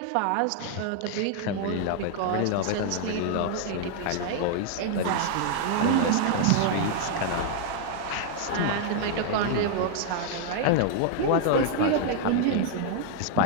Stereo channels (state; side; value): different; both; correlation 0.00